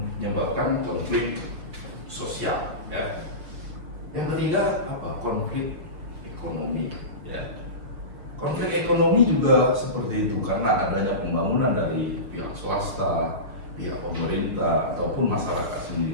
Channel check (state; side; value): late; left; 6.2 ms